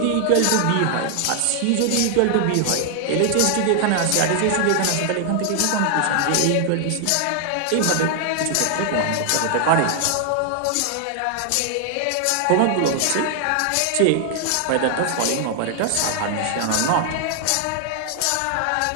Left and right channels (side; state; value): both; different; correlation 0.00